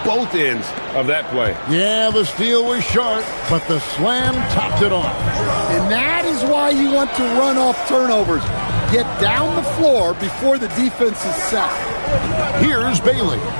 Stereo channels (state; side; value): inverted; both; correlation -1.00